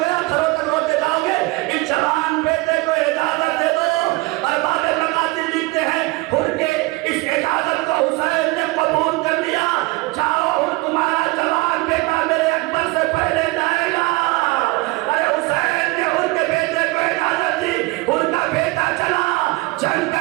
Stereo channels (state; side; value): quieter; left; 23.2 dB